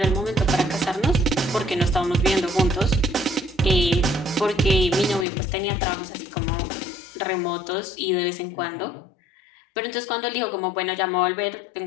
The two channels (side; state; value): right; drops out; at 5.2 s